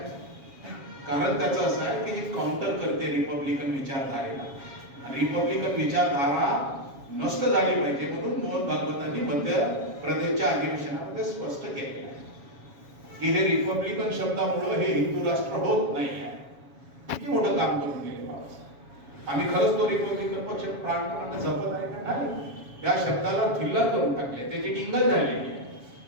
कारण त्याचं असं आहे की हे काउंटर करते रिपब्लिकन विचारधारेला. रिपब्लिकन विचारधारा नष्ट झाली पाहिजे म्हणून मोहन भागवतांनी मध्य प्रदेशच्या अधिवेशनामध्ये स्पष्ट केले की हे रिपब्लिकन शब्दामुळे हे हिंदू राष्ट्र होत नाही आहे. किती मोठं काम करून गेले बाबासाहेब. आम्ही खरंच तो रिपब्लिकन पक्ष प्राणपणाने जपत आहे का नाही? त्या शब्दाला थिल्लर करून टाकले, त्याची टिंगल झालेली आहे.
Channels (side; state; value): left; late; 7.2 ms